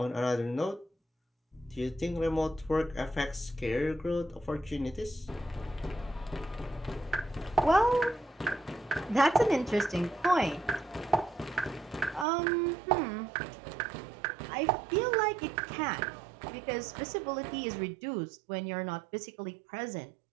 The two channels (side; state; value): left; drops out; at 12.2 s